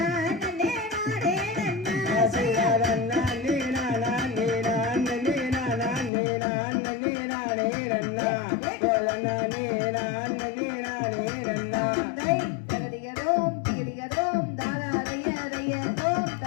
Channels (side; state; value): right; drops out; at 6.1 s